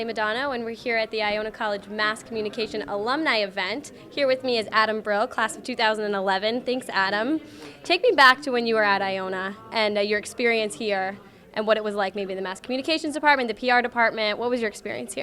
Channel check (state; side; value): identical; both; correlation 1.00